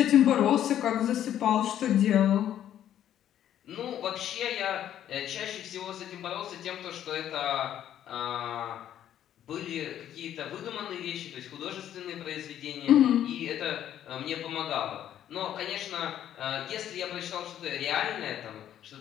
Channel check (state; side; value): quieter; right; 10.9 dB